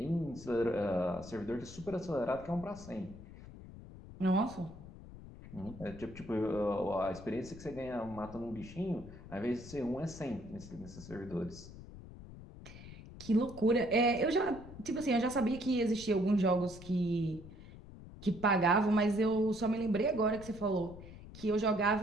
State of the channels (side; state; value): left; noise; rumble, 15 dB below the sound